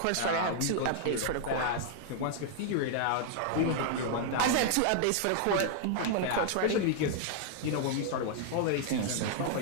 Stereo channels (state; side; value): different; both; correlation 0.00